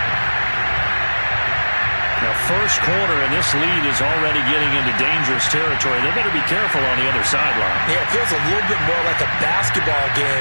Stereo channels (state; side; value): inverted; both; correlation -1.00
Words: Now, first quarter, and this lead is already getting into dangerous territory. They better be careful on the other sideline. Yeah, it feels a little bit more like a basketball game